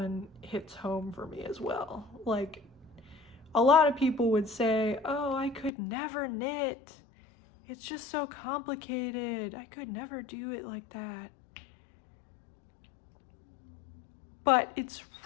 hits home for me as well. Like, a lot of people would say, oh, I could never knit. It's just so complicated. I could never do it like that. But it's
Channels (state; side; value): drops out; right; at 5.7 s